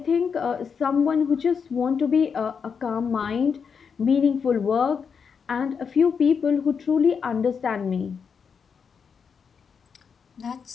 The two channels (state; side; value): quieter; right; 6.3 dB